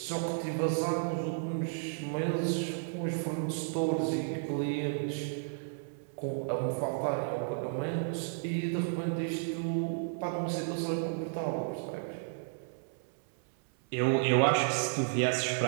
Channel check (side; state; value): left; silent; 56 dB below the other